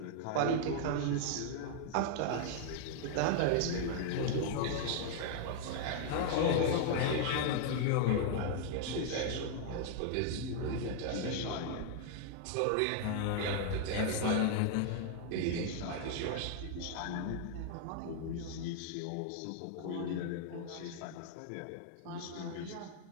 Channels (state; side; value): different; both; correlation 0.00